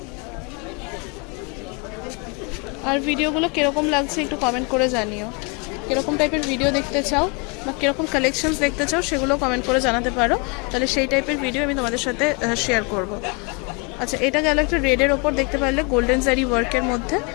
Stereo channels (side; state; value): right; quieter; 31.7 dB